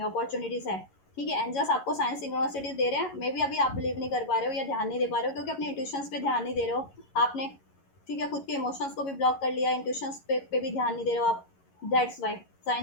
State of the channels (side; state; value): right; late; 11 ms